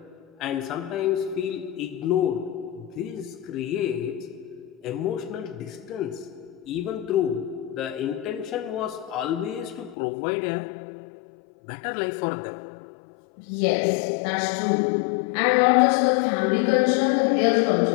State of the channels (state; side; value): drops out; right; at 10.0 s